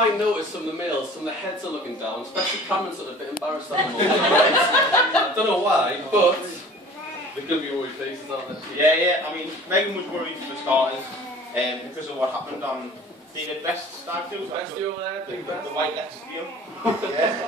notice from the males, some of the heads are looking down, especially Cameron's sort of a bit embarrassed at the moment. Right? I don't know why, but they're going to be worried faces, aren't they? Yeah. I mean, Megan was worried for starters because of what happened on David Best's stag do. Best do over there, big best. The White Leicester deal.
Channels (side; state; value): both; normal; correlation 0.45